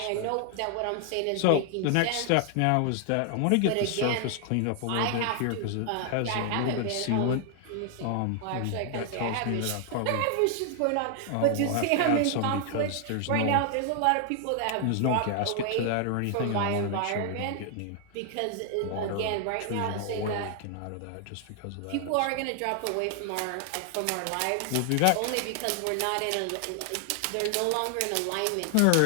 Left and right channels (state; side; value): different; both; correlation 0.00